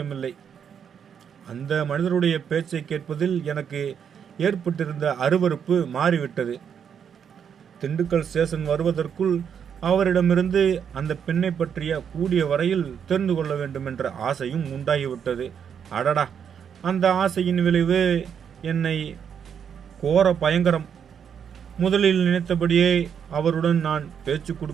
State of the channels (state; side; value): quieter; left; 7.8 dB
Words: அந்த மனிதருடைய பேச்சை கேட்பதில் எனக்கு ஏற்பட்டிருந்த அருவருப்பு மாறிவிட்டது. திண்டுக்கல் ஸ்டேஷன் வருவதற்குள் அவரிடமிருந்து அந்த பெண்ணை பற்றிய கூடிய வரையில் தெரிந்து கொள்ள வேண்டும் என்ற ஆசையும் உண்டாகிவிட்டது. அடடா, அந்த ஆசையின் விளைவு என்னை கோர பயங்கரம். முதலில் நினைத்தபடியே அவருடன் நான் பேச்சு